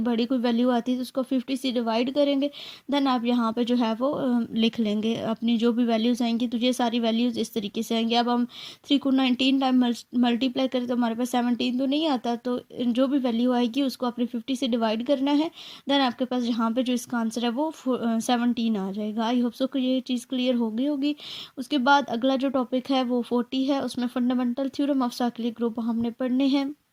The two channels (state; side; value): identical; both; correlation 1.00